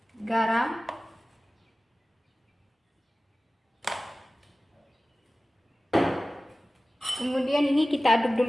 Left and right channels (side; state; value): both; normal; correlation 0.97